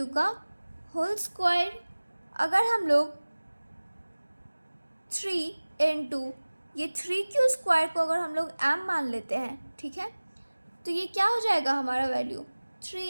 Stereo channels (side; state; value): both; inverted; correlation -1.00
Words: का होल स्क्वायर। अगर हम लोग 3 इंटू ये 3q स्क्वायर को अगर हम लोग m मान लेते हैं, ठीक है, तो ये क्या हो जाएगा हमारा वैल्यू